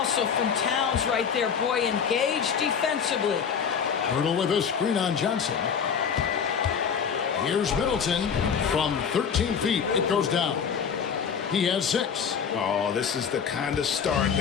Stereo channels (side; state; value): right; quieter; 6.9 dB